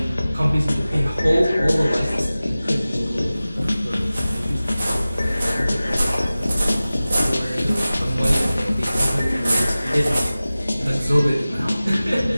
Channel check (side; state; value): both; inverted; correlation -0.97